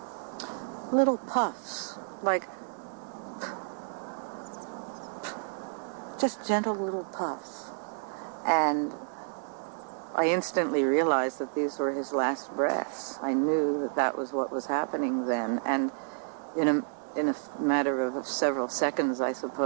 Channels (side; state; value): left; silent; digital silence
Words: little puffs, like just gentle little puffs. And I instantly realized that these were his last breaths. I knew that that was what was happening then. And in a matter of several seconds, I